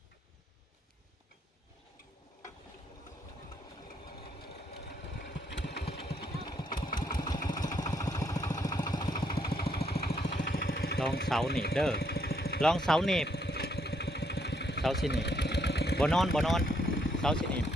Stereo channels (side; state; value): both; normal; correlation 0.73